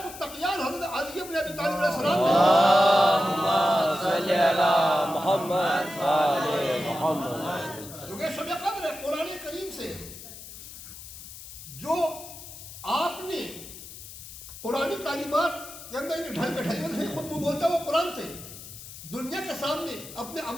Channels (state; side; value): noise; left; hiss, 14 dB below the sound